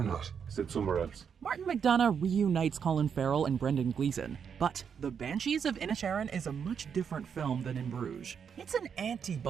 not? Sit somewhere else. Martin McDonagh reunites Colin Farrell and Brendan Gleeson, but The Banshees of Inisherin is a much different film than In Bruges. It's an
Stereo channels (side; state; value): left; quieter; 7.2 dB